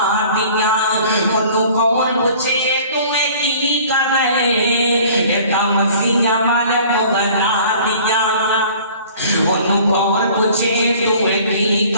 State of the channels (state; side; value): inverted; both; correlation -0.49